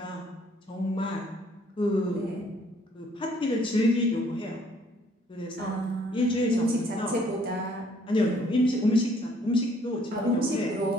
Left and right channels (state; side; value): normal; both; correlation 0.63